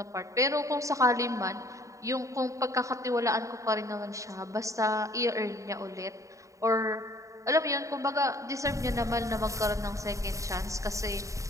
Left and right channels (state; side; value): late; left; 0.15 ms